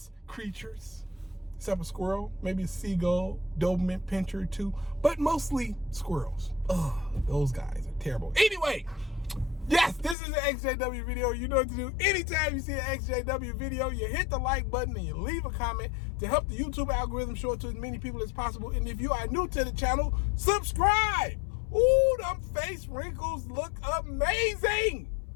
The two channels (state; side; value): drops out; right; at 10.2 s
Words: creatures. Except a squirrel, maybe a seagull, Doberman pincher too, but mostly squirrels. Ugh, those guys are terrible. Anyway, yes, this is an ExJw video. You know what to do. Anytime you see an ExJw video, you hit the like button and you leave a comment to help the YouTube algorithm show it to as many people as possible. And if you are new to the channel, subscribe. Ooh, them face wrinkles look amazing.